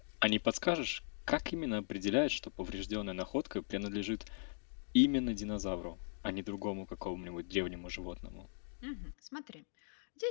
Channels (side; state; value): right; silent; digital silence